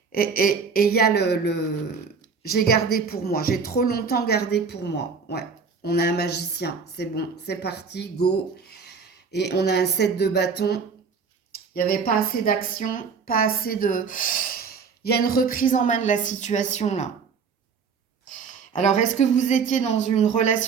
et il y a le j'ai gardé pour moi. J'ai trop longtemps gardé pour moi. Ouais, on a un magicien. C'est bon, c'est parti, go. Et on a un 7 de bâton. Il n'y avait pas assez d'action, pas assez de... Il y a une reprise en main de la situation, là. Alors, est-ce que vous étiez dans une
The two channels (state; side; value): quieter; left; 5.5 dB